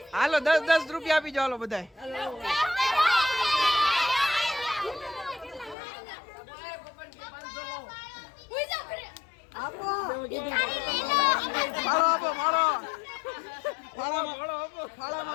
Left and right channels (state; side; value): drops out; right; at 5.8 s